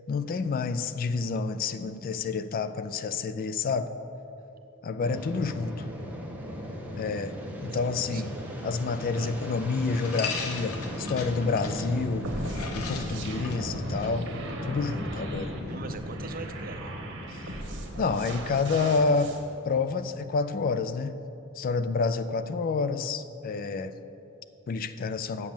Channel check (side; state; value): right; quieter; 3.4 dB